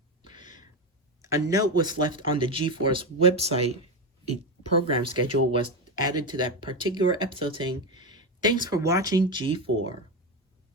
A note was left on the G4's website. A program schedule was added to that particular episode saying, "Thanks for watching G4."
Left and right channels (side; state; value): both; normal; correlation 0.14